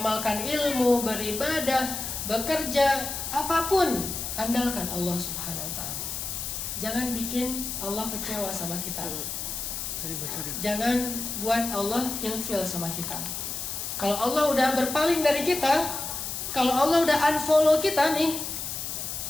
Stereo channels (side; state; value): left; noise; hiss, 5 dB below the sound